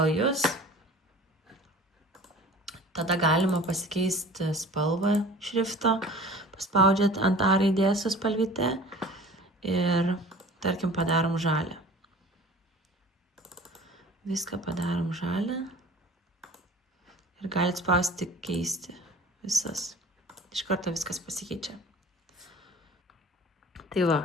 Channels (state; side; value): normal; both; correlation 0.44